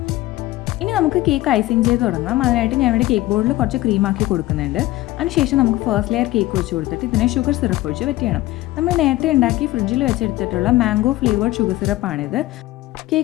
ഇനി നമുക്ക് കേക്ക് ഐസിങ് ചെയ്ത് തുടങ്ങാം. അതിനായിട്ട് ഞാൻ ഇവിടെ കേക്ക് ബോർഡിൽ കുറച്ച് ക്രീമാക്കി കൊടുക്കുന്നുണ്ട്. അതിനുശേഷം നമുക്ക് ഫസ്റ്റ് ലെയർ കേക്ക് വെച്ച് കൊടുത്തിട്ട് ഇതിനെ ഷുഗർ സിറപ്പ് ഒഴിച്ച് വെറ്റ് ചെയ്യണം. നമ്മൾ നേരത്തെ ഉണ്ടാക്കി ഫ്രിഡ്ജിൽ വെച്ചെടുത്തിട്ടുള്ള മാംഗോ ഫ്ലേവേർഡ് ഷുഗർ സിറപ്പാണിത്.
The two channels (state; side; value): quieter; right; 17.5 dB